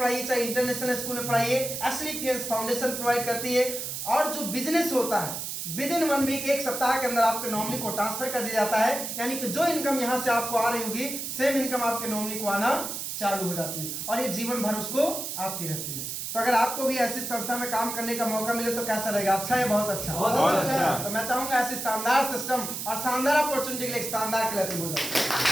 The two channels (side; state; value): right; noise; hiss, 5 dB below the sound